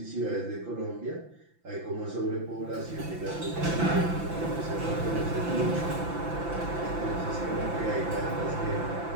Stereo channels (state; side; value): late; left; 5.9 ms